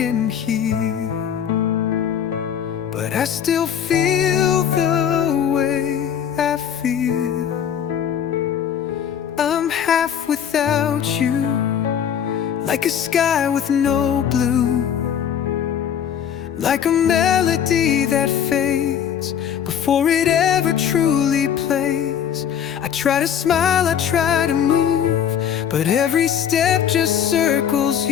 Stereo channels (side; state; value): right; quieter; 8.8 dB